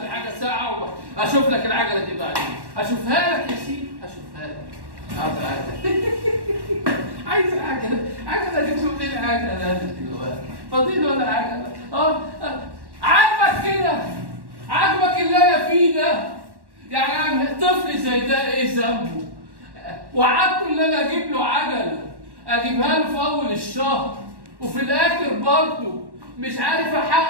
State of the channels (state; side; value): late; left; 1.1 ms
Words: لي حاجة ساعة وأشوف لك العجلة دي بعدين. أشوفها لك يا سيدي، أشوفها لك. عايز عجلة، عجلة دي تقول لي العجلة دلوقتي. فاضيل ولا عجلة؟ عاجبك كده؟ عاجبك اللي أنا فيه ده؟ يعني طفل زي ده ايه ذنبه؟ وعدته ان انا اجيب له عجله، اجيبها له في اول الشهر، وفي الاخر برضه مش عارف